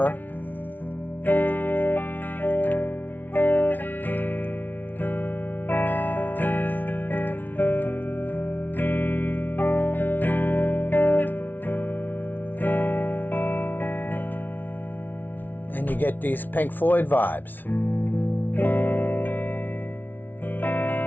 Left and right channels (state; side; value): late; right; 0.086 ms